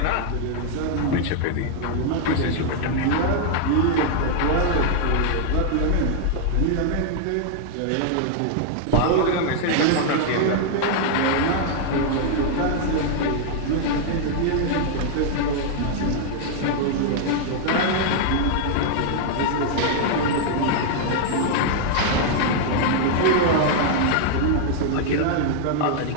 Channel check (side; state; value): both; different; correlation 0.00